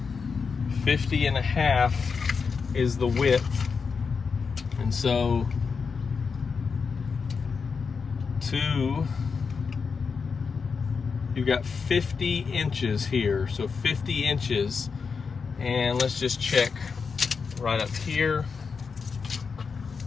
Is the width, and so you've got 50 inches here, so 50 inches, and let's just check right up here.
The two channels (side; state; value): right; quieter; 5.4 dB